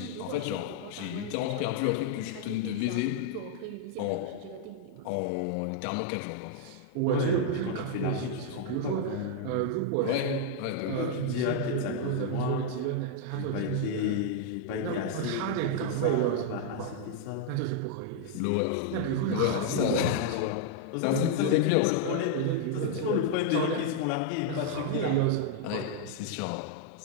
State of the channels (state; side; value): different; both; correlation -0.01